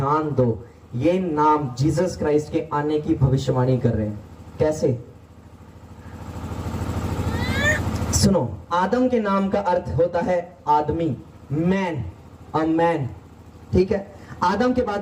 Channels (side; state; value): both; identical; correlation 1.00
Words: दो, ये नाम जीसस क्राइस्ट के आने की भविष्यवाणी कर रहे हैं। कैसे? सुनो, आदम के नाम का अर्थ होता है आदमी, मैन, अ मैन, ठीक है। आदम के